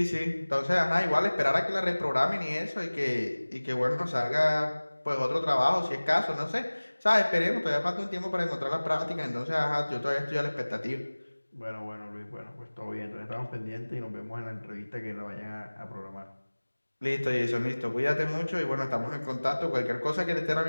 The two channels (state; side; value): inverted; both; correlation -1.00